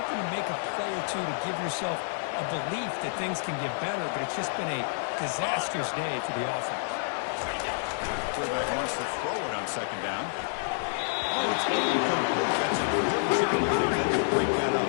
to make a play or two to give yourself a belief that things can get better, but it's just been a disastrous day for the offense. Quarterback wants to throw it on second down. Oh, it's incomplete. That's a good job to break that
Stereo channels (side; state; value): right; silent; 58 dB below the other